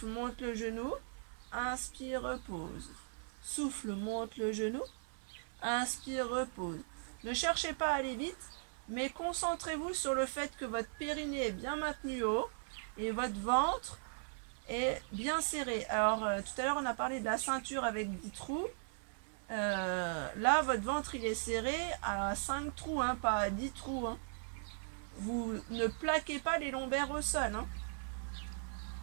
monte le genou. Inspire, repose. Souffle, monte le genou. Inspire, repose. Ne cherchez pas à aller vite, mais concentrez-vous sur le fait que votre périnée est bien maintenu haut et votre ventre est bien serré. Alors, tout à l'heure, on a parlé de la ceinture avec 10 trous. Là, votre ventre, il est serré à 5 trous, hein, pas à 10 trous. Hein. Vous ne plaquez pas les lombaires au sol. Hein.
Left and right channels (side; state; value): left; silent; 52 dB below the other